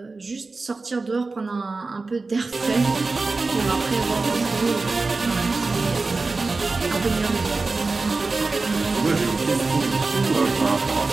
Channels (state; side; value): quieter; left; 3.7 dB